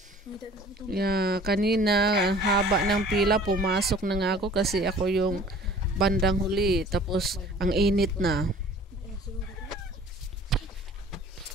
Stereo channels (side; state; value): both; normal; correlation 0.48